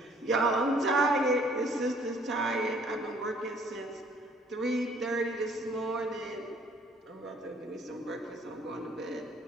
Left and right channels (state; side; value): normal; both; correlation 0.60